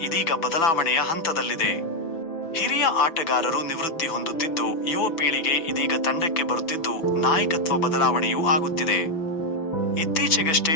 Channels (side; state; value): right; late; 6.0 ms